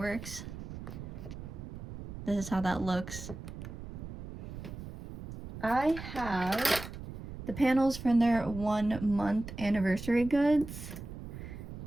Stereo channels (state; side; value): noise; right; rumble, 10 dB below the sound